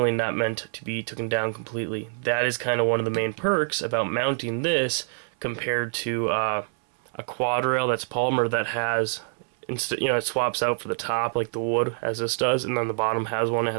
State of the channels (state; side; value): silent; left; 60 dB below the other